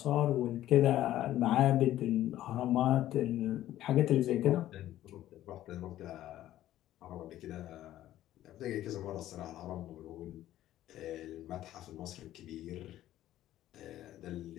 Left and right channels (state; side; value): quieter; right; 13.5 dB